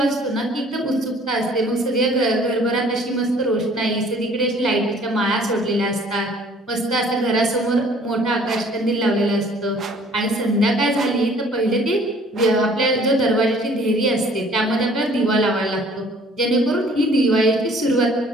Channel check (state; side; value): normal; both; correlation 0.55